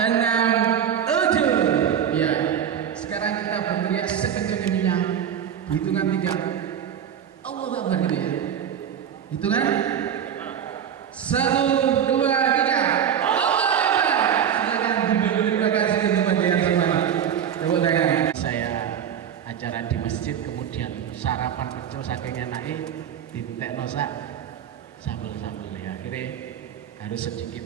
6, 7. Ya. Sekarang kita berteriak sekencang-kencangnya. Hitungan 3. Allahu Akbar gitu ya. Hitungan 1, 2, 3. Allahu Akbar. Silakan duduk. Terima kasih untuk bagian semua. Saya acara di masjid, kemudian sarapan kecil saking enaknya diminta nosak sambel-sambel ya, akhirnya harus sedikit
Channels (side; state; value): left; quieter; 8.8 dB